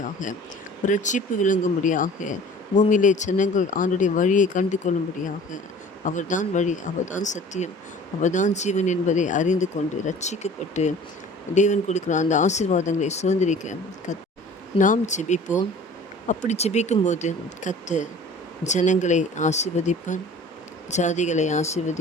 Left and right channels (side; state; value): both; normal; correlation 0.45